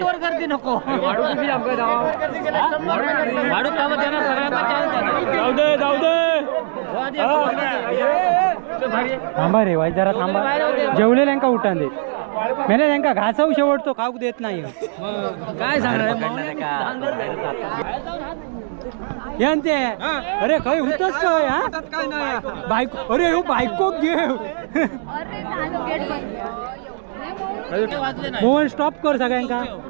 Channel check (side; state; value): left; silent; digital silence